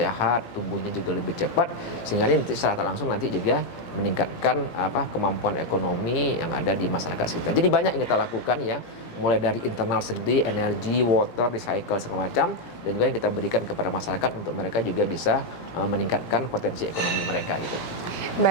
tumbuhnya juga lebih cepat, sehingga ini nanti secara langsung nanti juga meningkatkan kemampuan ekonomi yang ada di masyarakat sekitar. Jadi banyak yang kita lakukan ya, mulai dari internal sendiri, energi, water, recycle segala macam, dan juga yang kita berikan kepada masyarakat untuk mereka juga bisa meningkatkan potensi ekonomi mereka gitu.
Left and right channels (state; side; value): late; right; 17 ms